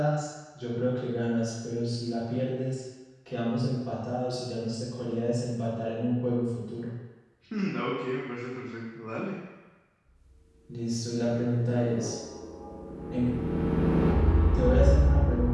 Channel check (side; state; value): both; identical; correlation 1.00